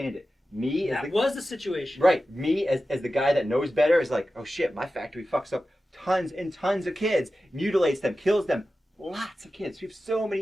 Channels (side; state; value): both; normal; correlation 0.94